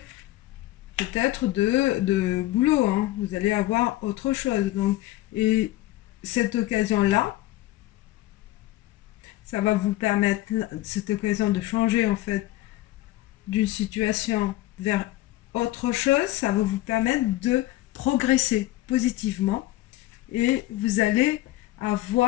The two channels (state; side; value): quieter; right; 16.5 dB